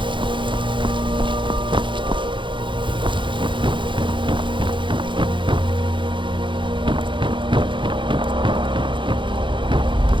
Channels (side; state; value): left; late; 0.23 ms